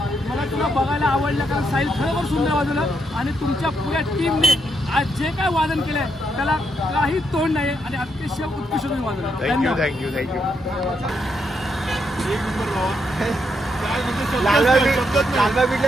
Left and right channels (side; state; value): both; normal; correlation 0.79